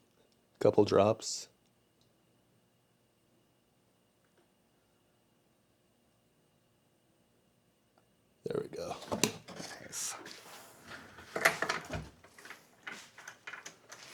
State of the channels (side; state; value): both; identical; correlation 1.00